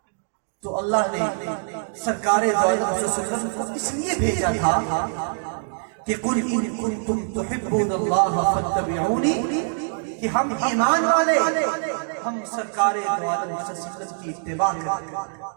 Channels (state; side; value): silent; left; digital silence